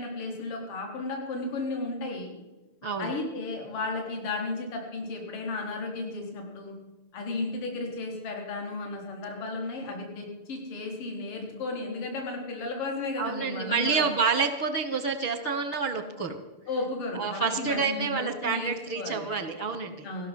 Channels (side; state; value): right; late; 6.8 ms